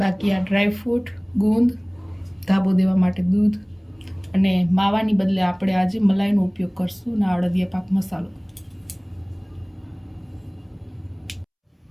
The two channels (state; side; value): identical; both; correlation 1.00